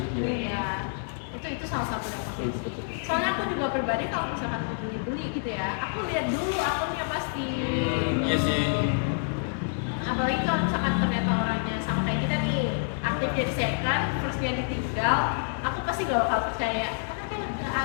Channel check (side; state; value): right; silent; digital silence